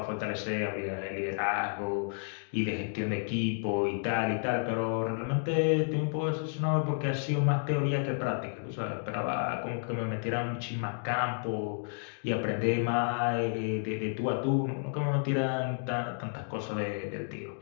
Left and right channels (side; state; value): right; silent; 57 dB below the other